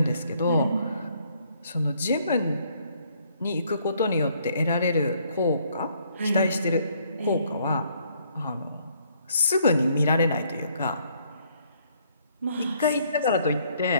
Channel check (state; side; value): inverted; both; correlation -0.67